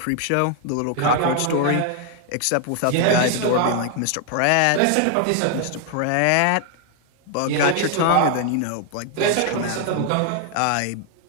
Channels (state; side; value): different; both; correlation 0.00